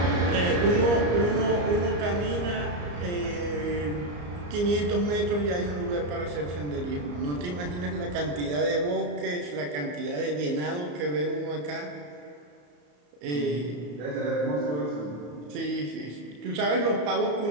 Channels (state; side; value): late; left; 34 ms